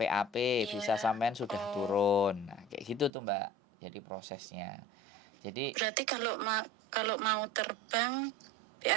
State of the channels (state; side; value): drops out; left; at 3.1 s